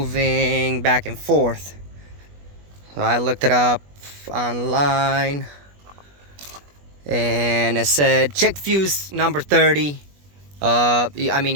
back and forth. So I looked it up online, and it said check fuse number 30. I mean,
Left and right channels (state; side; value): late; left; 21 ms